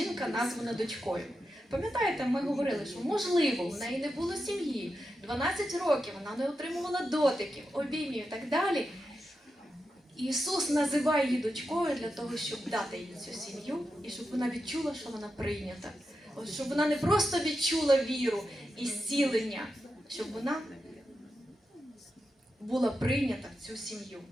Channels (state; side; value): normal; both; correlation 0.89